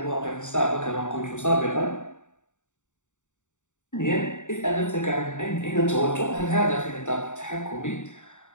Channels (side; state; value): right; late; 0.85 ms